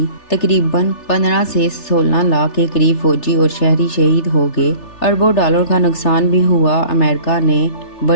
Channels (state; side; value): late; right; 3.3 ms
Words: تقریباً 15 سے 16 لاکھ کے قریب فوجی اور شہری شہید ہو گئے۔ اربوں ڈالر کا نقصان بھی ہوا۔ امریکہ نے